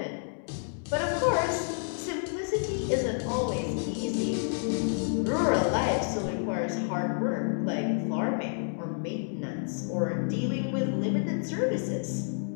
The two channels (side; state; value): right; silent; digital silence